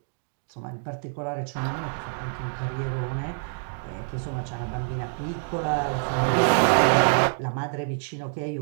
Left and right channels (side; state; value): left; silent; digital silence